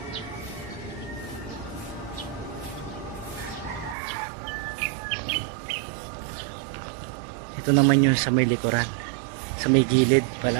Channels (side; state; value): left; drops out; at 4.0 s